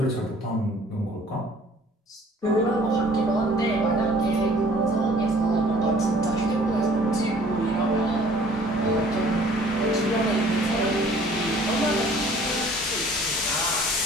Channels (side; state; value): both; normal; correlation 0.54